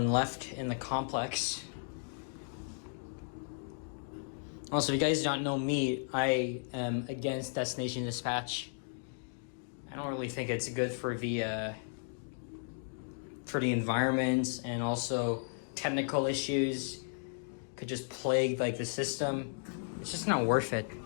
left in the complex. Also, if you guys don't know me, I am against destination dispatch. I don't really think it's good for the environment, and also technical issues could just plague like the system. It's just not worth it.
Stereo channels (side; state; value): right; silent; digital silence